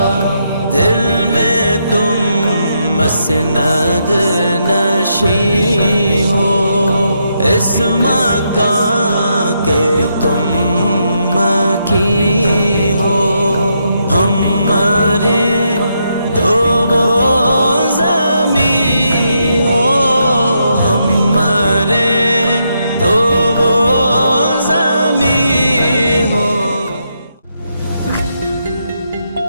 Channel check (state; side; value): inverted; both; correlation -0.79